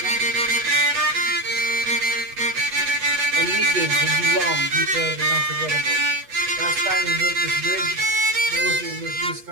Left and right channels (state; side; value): late; left; 8.2 ms